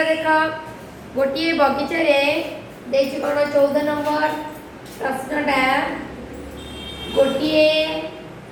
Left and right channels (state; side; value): identical; both; correlation 1.00